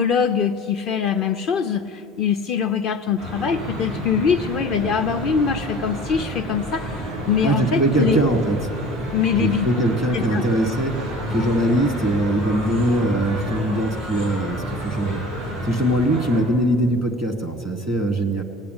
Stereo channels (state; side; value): normal; both; correlation 0.43